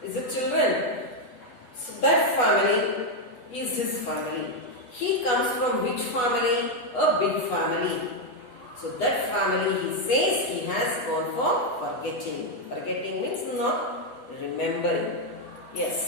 Is it children? So that family is his family. He comes from which family? A big family. So that family, he says, he has gone for forgetting. Forgetting means not remembering.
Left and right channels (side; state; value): right; late; 8.2 ms